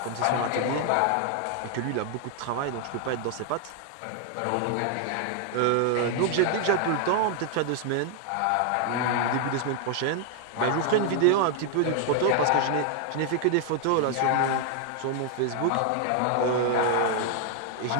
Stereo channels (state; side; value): different; both; correlation 0.00